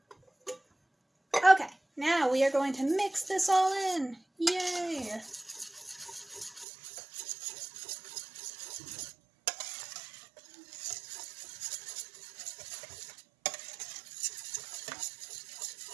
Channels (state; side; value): drops out; left; at 6.7 s